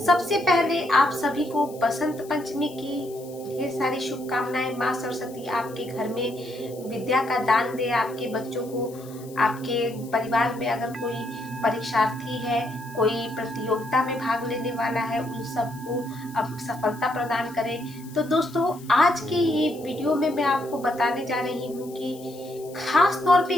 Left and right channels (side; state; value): left; noise; hiss, 21 dB below the sound